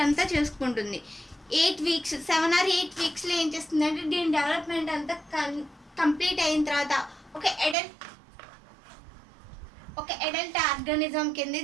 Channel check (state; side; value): drops out; left; at 7.8 s